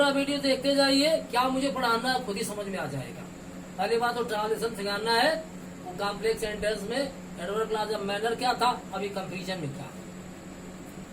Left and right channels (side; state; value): both; identical; correlation 1.00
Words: वीडियो देखते जाइए, क्या मुझे पढ़ाना है खुद ही समझ में आ जाएगा। पहली बात तो ट्रांसलेशन सिखाना है, वो कॉम्प्लेक्स सेंटेंस में एडवर्ब क्लास ऑफ मैनर क्या था, अभी कंपैरिजन में क्या।